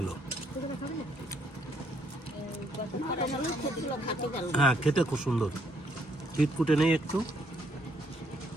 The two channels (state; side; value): normal; both; correlation 0.70